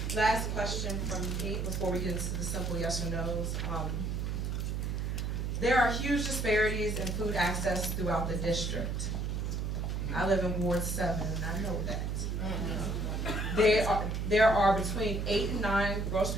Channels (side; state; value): right; noise; hum, 1 dB below the sound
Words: Last question from me before we get into the simple yes or no's. There are huge disparities in food access throughout the district. I live in Ward 7, and I know that. There are between 8 and 9